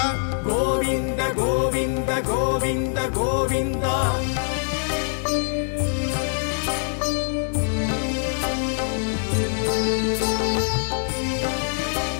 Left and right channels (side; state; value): right; silent; 63 dB below the other